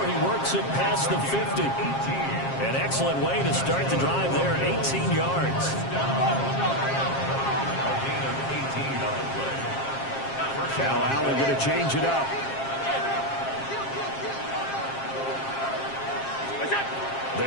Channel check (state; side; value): late; right; 7.5 ms